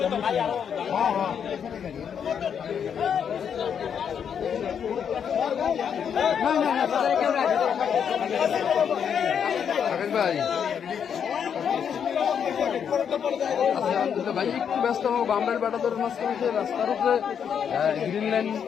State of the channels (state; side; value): quieter; right; 7.7 dB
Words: ভাই ভাই একটু ব্যস্ত হবো বামরাইল বাটাদোর মাঝখানে রাস্তার উপরে গ্রিন লাইন